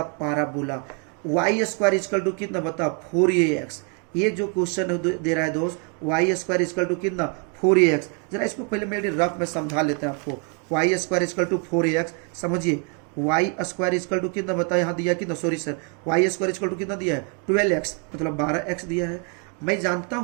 parabola y square equal to कितना बता 4ax। ये जो क्वेश्चन दे रहा है दोस्त, y स्क्वायर इक्वल टू कितना 4ax। जरा इसको पहले मेरे रफ में समझा लेते हैं आपको। y square equal to 4ax, समझिए y स्क्वायर इक्वल टू कितना बता, यहाँ दिया कितना, sorry sir, y square equal to कितना दिया है 12x, मतलब 12x दिया है। मैं जानता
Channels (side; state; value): left; quieter; 36.7 dB